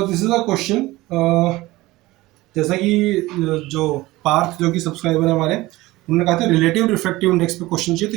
this is a question. जैसा कि जो पार्थ जो कि सब्सक्राइबर है हमारे, उन्होंने कहा था रिलेटिव रिफ्रैक्टिव इंडेक्स पे क्वेश्चन चाहिए,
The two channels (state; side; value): quieter; left; 19.1 dB